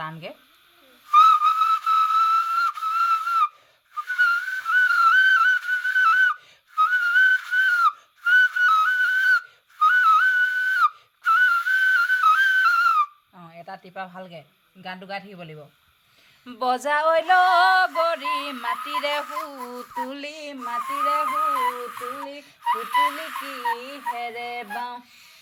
টানকৈ। অঁ, এটা টিপা ভালকৈ গানটো গাই থাকিব লাগিব। বজাই গৰি মাটিৰে হুতুলি মাটিৰে হুতুলি হুতুলি কিহেৰে বাওঁ,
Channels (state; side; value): identical; both; correlation 1.00